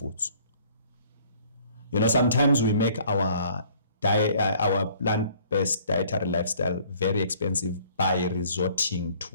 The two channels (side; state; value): both; inverted; correlation -0.56